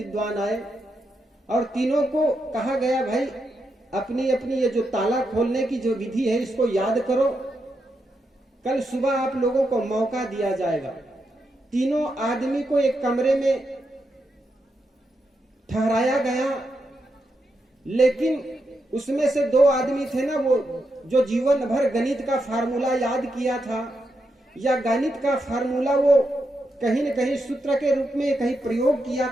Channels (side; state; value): both; normal; correlation 0.84